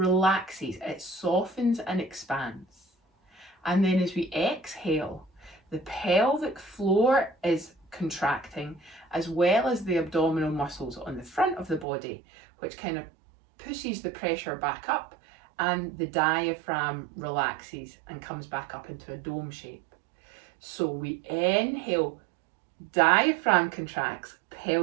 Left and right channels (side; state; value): left; drops out; at 11.9 s